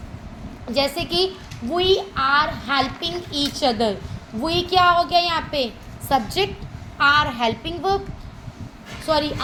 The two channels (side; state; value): both; identical; correlation 1.00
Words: जैसे कि we are helping each other, we क्या हो गया यहाँ पे? Subject, are helping verb, sorry